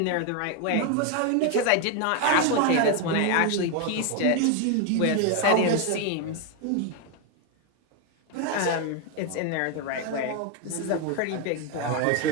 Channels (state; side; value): different; both; correlation 0.01